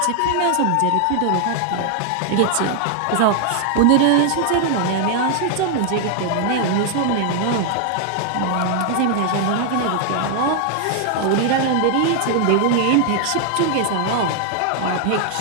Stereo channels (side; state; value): both; different; correlation 0.00